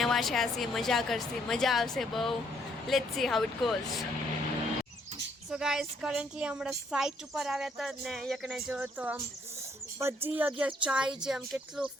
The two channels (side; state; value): both; normal; correlation 0.69